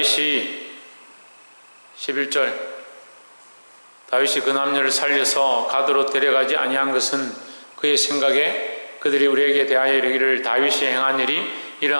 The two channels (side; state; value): both; inverted; correlation -1.00